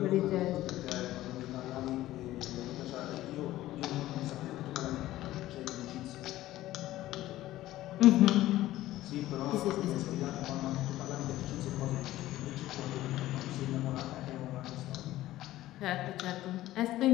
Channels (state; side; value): quieter; right; 15.4 dB